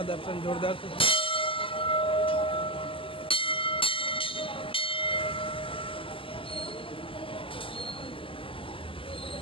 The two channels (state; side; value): late; right; 0.25 ms